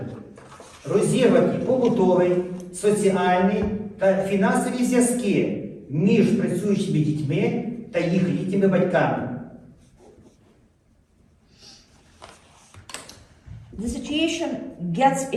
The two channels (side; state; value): both; identical; correlation 1.00